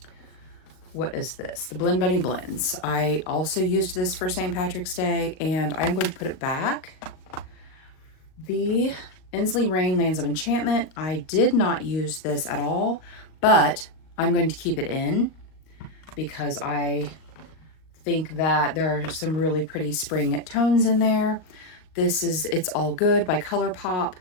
What is this? The Blend Bunny Blends. I also used this for St. Patrick's Day, and I'm going to put it back. The Inslee Rain Lands of Enchantment. I did not use this at all, but I'm going to keep it in because I think that there are some really pretty spring tones in there. This is It's All Good by ColourPop.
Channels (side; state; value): right; late; 38 ms